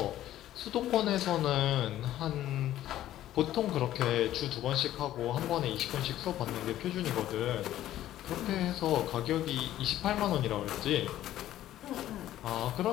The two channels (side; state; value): right; quieter; 13.1 dB